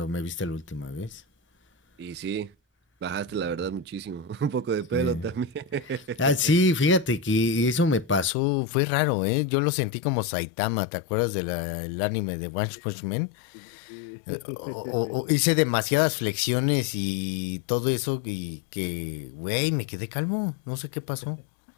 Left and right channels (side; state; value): right; drops out; at 8.3 s